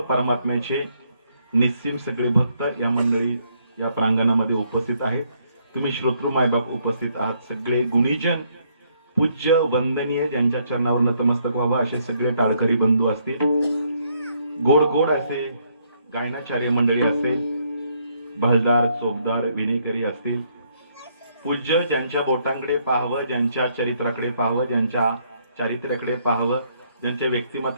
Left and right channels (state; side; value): inverted; both; correlation -0.71